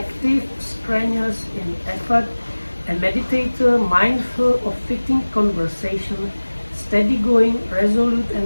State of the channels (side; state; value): both; inverted; correlation -1.00